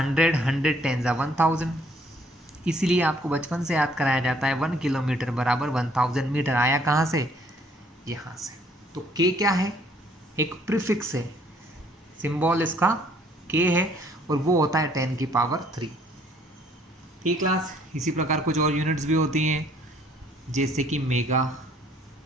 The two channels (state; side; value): normal; both; correlation 0.62